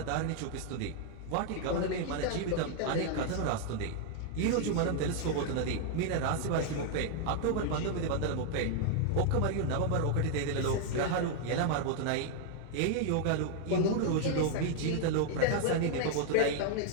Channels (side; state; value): both; different; correlation 0.00